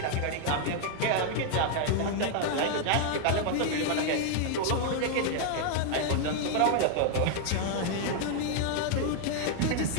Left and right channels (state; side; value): different; both; correlation 0.00